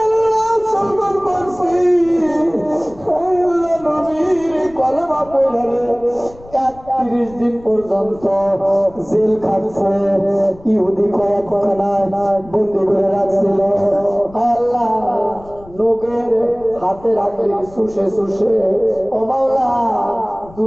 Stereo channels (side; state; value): left; noise; rumble, 22 dB below the sound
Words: আল্লাহ সলমান ফার্সি আয় আল্লাহ নবীর কলমা পড়ে 31 দিন পর্যন্ত জেল খাটছে ইহুদি কয়েকখানায় বন্দি করে রাখছিল আল্লাহ লোকের হাতে রাখলে শুষে শুষে ও মাওলা